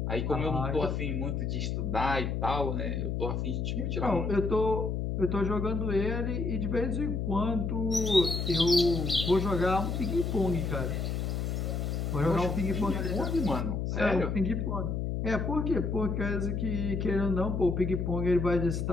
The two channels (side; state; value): left; noise; hum, 1 dB below the sound